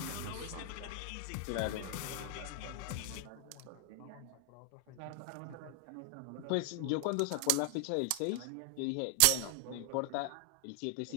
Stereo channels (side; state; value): both; different; correlation 0.00